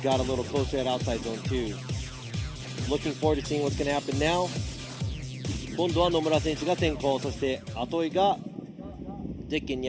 Got a little closer at outside zone 2. Looking forward to seeing what's going to happen now. 今度は野村選手が先行、そして後追いがゼッケン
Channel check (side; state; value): both; identical; correlation 1.00